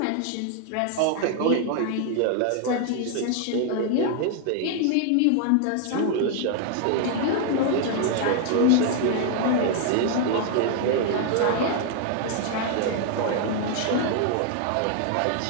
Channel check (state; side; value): different; both; correlation 0.00